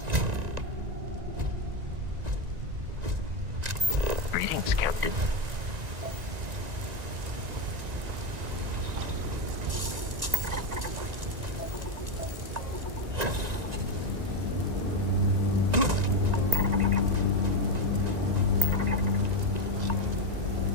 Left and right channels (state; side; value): late; left; 1.9 ms